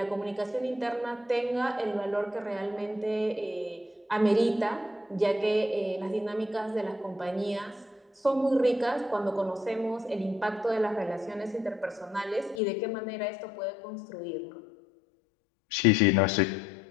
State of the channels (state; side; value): drops out; right; at 12.6 s